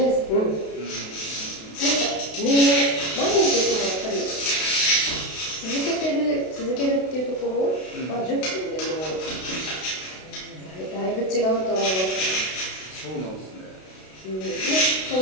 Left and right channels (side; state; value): right; late; 32 ms